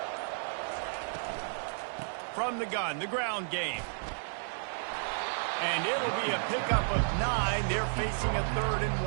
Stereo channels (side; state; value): left; silent; digital silence